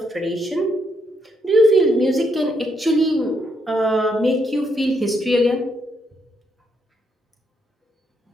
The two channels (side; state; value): both; normal; correlation 0.76